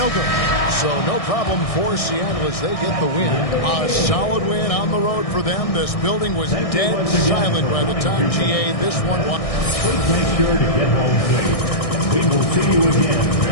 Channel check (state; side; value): late; right; 1.6 ms